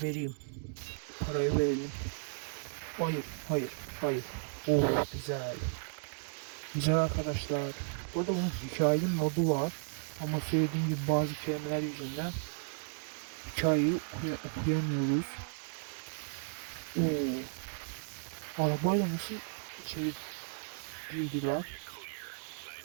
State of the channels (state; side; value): silent; left; digital silence